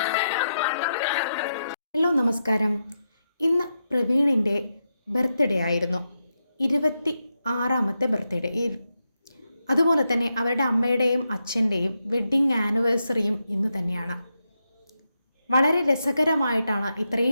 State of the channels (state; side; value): inverted; both; correlation -0.86